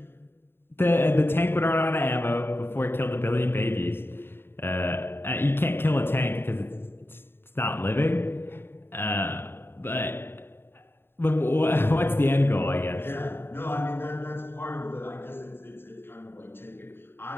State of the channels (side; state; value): right; late; 0.11 ms